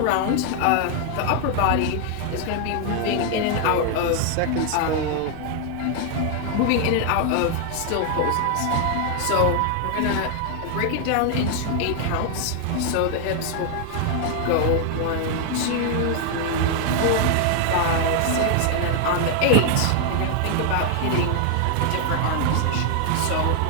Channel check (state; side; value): different; both; correlation 0.00